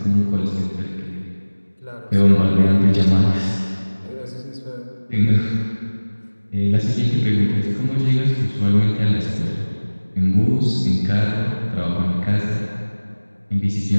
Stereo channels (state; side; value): inverted; both; correlation -1.00